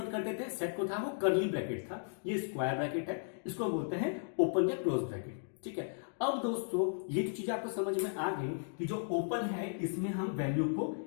करते थे, सेट को था वो कर्ली ब्रैकेट था, ये स्क्वायर ब्रैकेट है, इसको बोलते हैं ओपन या क्लोज ब्रैकेट, ठीक है। अब दोस्तों ये जो चीज आपको समझ में आ गई कि जो ओपन है इसमें हम वैल्यू को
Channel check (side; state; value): right; silent; digital silence